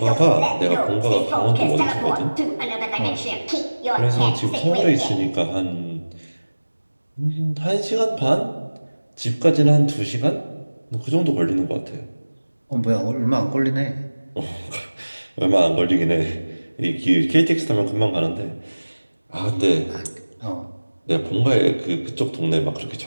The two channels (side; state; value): both; inverted; correlation -1.00